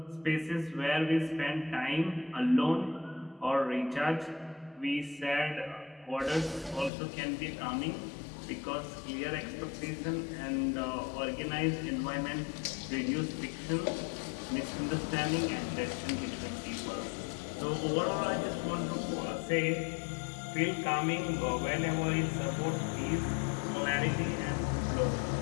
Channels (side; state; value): right; drops out; at 6.9 s